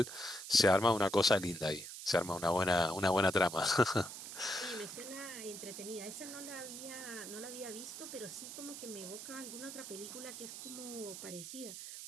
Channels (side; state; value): right; noise; hiss, 10 dB below the sound